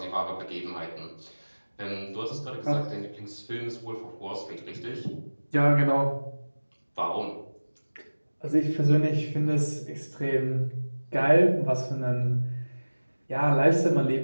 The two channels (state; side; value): inverted; both; correlation -1.00